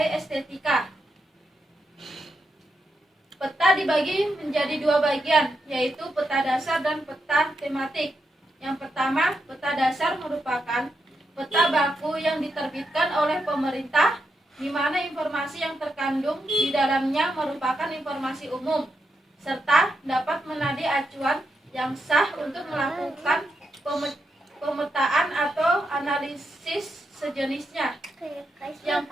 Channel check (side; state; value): both; normal; correlation 0.83